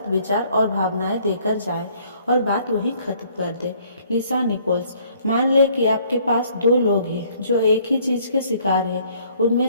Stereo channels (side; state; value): both; inverted; correlation -0.61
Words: विचार और भावनाएं देकर जाए और बात वहीं खत्म कर दे। लिसा निकोल्स। मान ले कि आपके पास दो लोग हैं जो एक ही चीज के शिकार हैं। उनमें